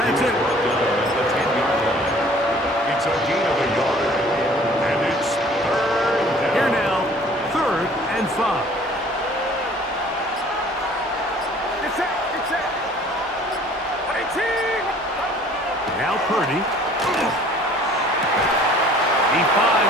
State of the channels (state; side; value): normal; both; correlation 0.52